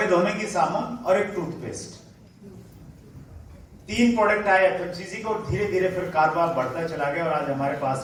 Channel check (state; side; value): identical; both; correlation 1.00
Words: धोने की साबुन और एक टूथपेस्ट। 3 प्रोडक्ट आए एफएमसीजी को, धीरे धीरे फिर कारोबार बढ़ता चला गया और आज हमारे पास